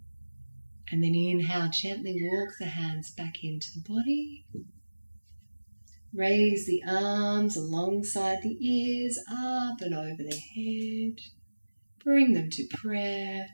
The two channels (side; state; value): both; inverted; correlation -1.00